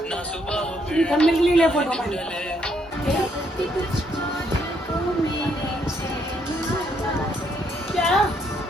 थंबनेल के लिए ले फोटो मैंने। क्या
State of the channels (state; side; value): normal; both; correlation 0.72